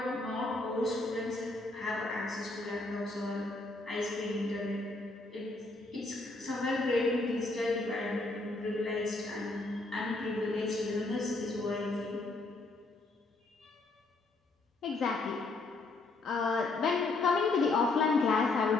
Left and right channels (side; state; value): right; quieter; 3.2 dB